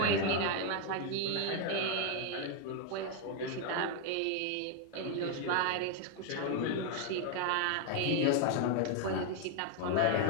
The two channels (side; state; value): both; different; correlation 0.01